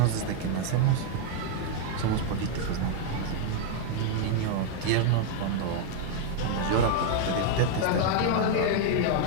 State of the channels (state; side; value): different; both; correlation 0.00